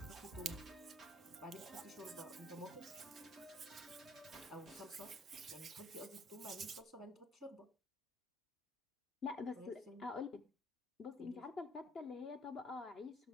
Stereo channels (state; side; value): normal; both; correlation 0.61